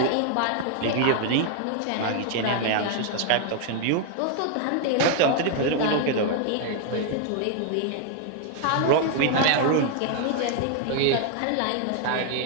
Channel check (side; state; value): both; different; correlation 0.00